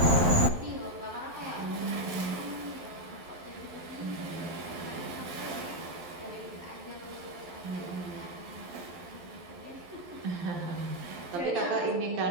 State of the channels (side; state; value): left; late; 11 ms